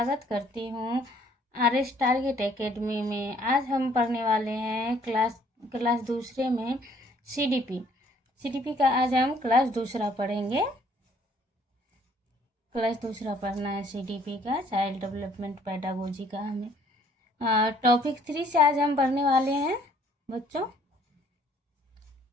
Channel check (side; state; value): both; normal; correlation 0.61